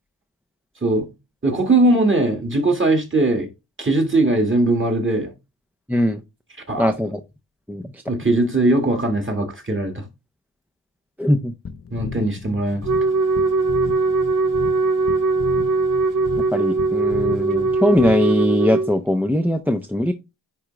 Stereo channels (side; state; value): both; normal; correlation 0.61